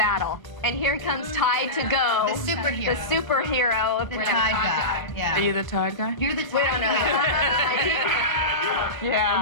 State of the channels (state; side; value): late; right; 1.0 ms